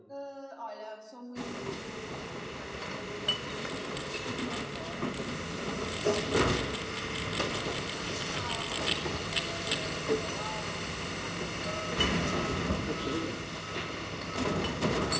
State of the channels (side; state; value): both; identical; correlation 1.00